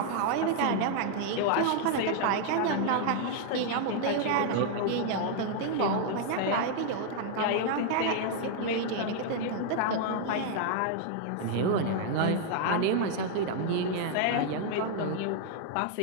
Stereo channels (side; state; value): both; different; correlation 0.00